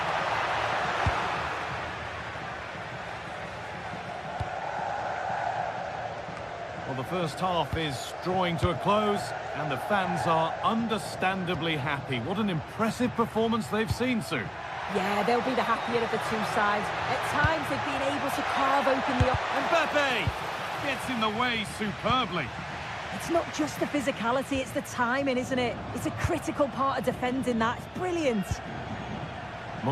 Well, the first half is drawing to a close, and the fans are understandably happy. What an impressive performance they've seen, Sue. Yeah, they'll be the happier of the two sides. At times, they've been able to carve open the... Mbappe gets in the way superbly. It's not just the physicality, it's the timing, isn't it? It's a critical part of defending that. It's brilliant.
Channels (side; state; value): both; identical; correlation 1.00